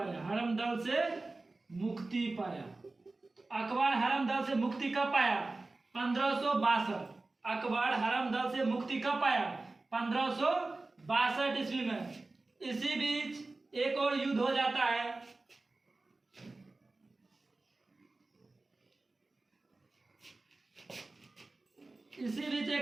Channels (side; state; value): left; quieter; 3.3 dB